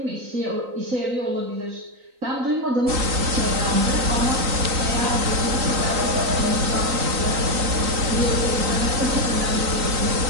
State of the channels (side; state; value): left; late; 3.9 ms